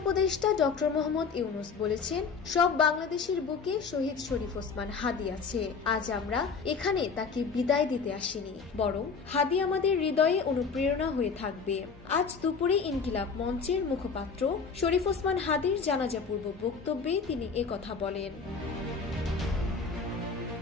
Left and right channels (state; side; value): quieter; right; 5.3 dB